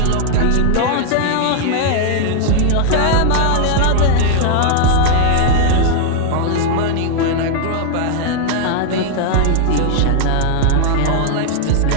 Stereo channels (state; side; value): different; both; correlation 0.00